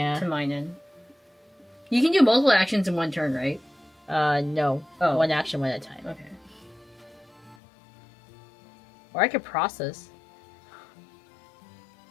to mine in. You can do multiple actions in one turn, right? No. Oh. One action, one at a time. Okay. Or I could process.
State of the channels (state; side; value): drops out; right; at 7.6 s